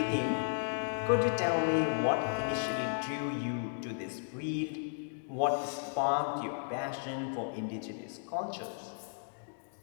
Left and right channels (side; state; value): right; silent; digital silence